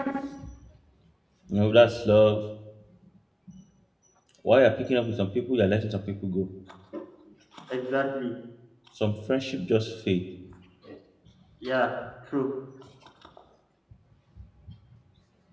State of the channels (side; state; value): both; identical; correlation 1.00